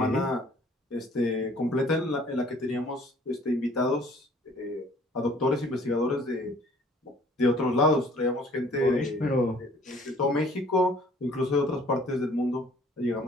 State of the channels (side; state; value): both; normal; correlation 0.55